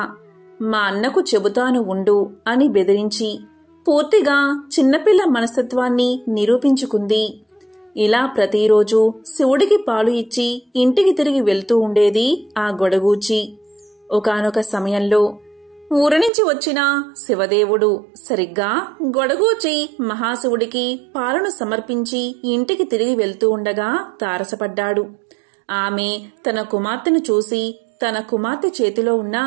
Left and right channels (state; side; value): drops out; left; at 16.3 s